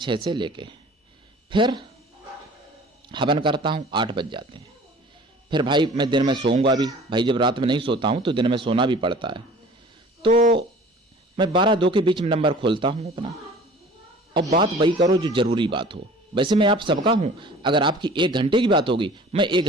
से लेके, फिर हवन करता हूँ, 8 बज जाते हैं। फिर भाई मैं दिन में सोऊंगा भी, भाई जब रात में नहीं सोता हूँ तो दिन में सोना भी पड़ता है। तो मैं 12-2 के बीच में नंबर खोलता हूँ अपना, और बात वही करो जो जरूरी बात हो। वैसे मैं आप सबका हूँ, अगर आपकी 1 घंटे की बात होगी मैं 1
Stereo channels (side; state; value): both; normal; correlation 0.46